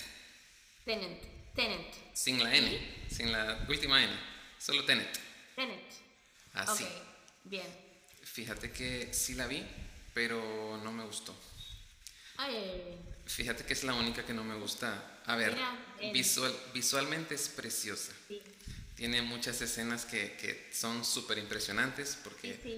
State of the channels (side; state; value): both; identical; correlation 1.00